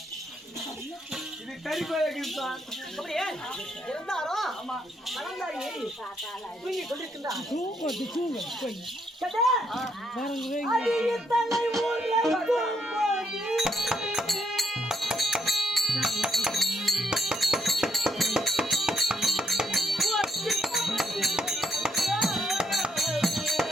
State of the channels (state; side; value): normal; both; correlation 0.74